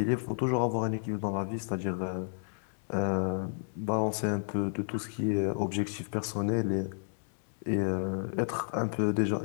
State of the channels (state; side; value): silent; right; digital silence